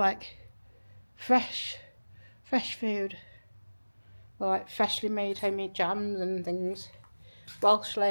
fresh food. Or like freshly made homemade jams and things. Welsh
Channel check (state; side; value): inverted; both; correlation -1.00